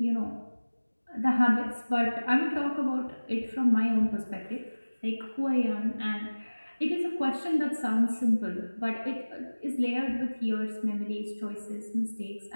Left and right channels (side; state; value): both; inverted; correlation -1.00